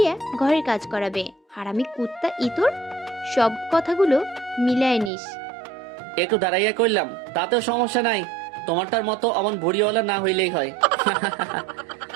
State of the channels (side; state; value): left; drops out; at 5.1 s